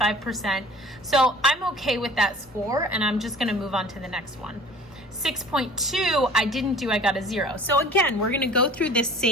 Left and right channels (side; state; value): both; normal; correlation 0.46